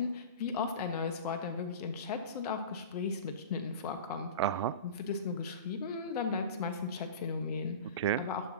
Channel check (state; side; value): inverted; both; correlation -0.32